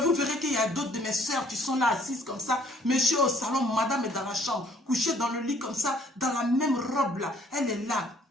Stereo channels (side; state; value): both; normal; correlation 0.60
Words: verrez qu'il y a d'autres de mes soeurs qui sont là assises comme ça. Monsieur au salon, madame est dans la chambre, couchée dans le lit comme ça, dans la même robe là. Elle est là.